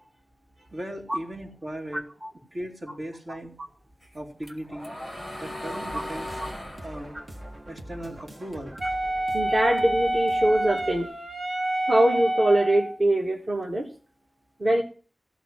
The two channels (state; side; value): normal; both; correlation 0.97